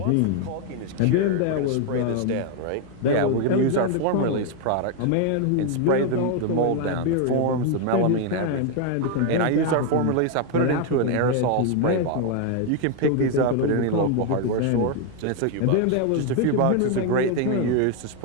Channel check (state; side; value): different; both; correlation 0.01